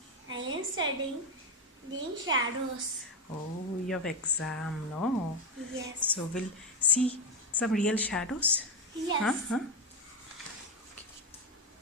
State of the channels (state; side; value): normal; both; correlation 0.09